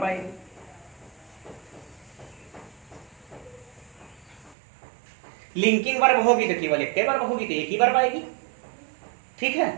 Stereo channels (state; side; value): drops out; left; at 4.5 s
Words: आएगी। लिंकिंग वर्ब होगी तो केवल एक वर्ब होगी, तो एक ही वर्ब आएगी। ठीक है।